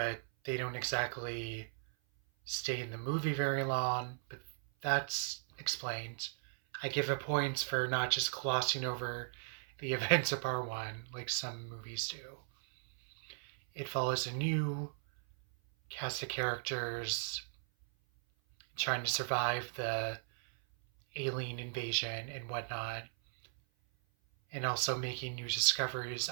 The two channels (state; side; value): silent; left; 53 dB below the other